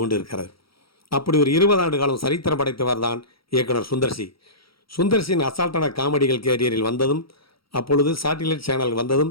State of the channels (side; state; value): right; late; 0.75 ms